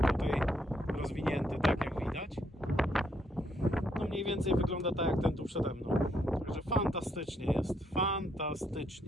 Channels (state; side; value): normal; both; correlation 0.74